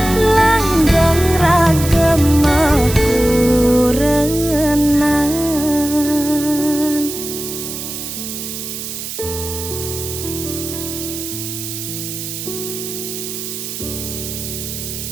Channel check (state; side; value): noise; right; hiss, 7 dB below the sound